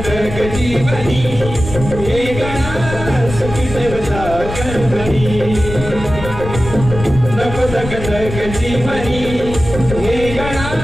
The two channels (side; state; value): left; noise; rumble, 8 dB below the sound